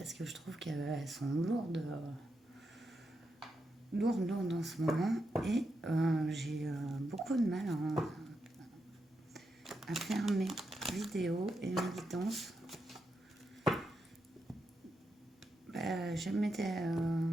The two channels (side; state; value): both; normal; correlation 0.85